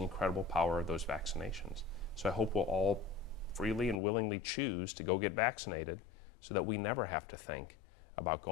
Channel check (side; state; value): right; drops out; at 4.0 s